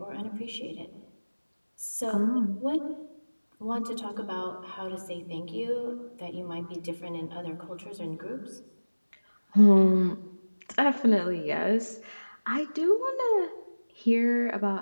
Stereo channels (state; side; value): inverted; both; correlation -1.00